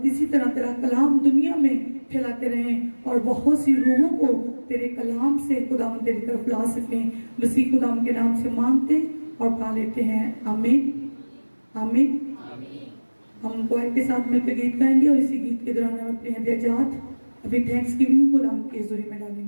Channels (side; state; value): both; inverted; correlation -1.00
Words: इसी तरह तेरा कलाम दुनिया में फैलाते रहें और बहुत सी रूहों को तेरे कलाम से खुदावंत तेरी तरफ ला सकें। मसीह खुदावंत के नाम से मांगते और पा लेते हैं, आमीन आमीन। हम क्वायर के साथ मिलकर गीत गाएंगे और इसी गीत के दौरान हम अपने हदियाजात अभी थैंक्स गिविंग खुदावंत की हुजूरी में